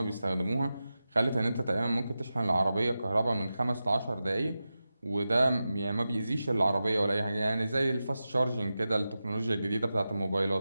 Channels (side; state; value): both; inverted; correlation -0.93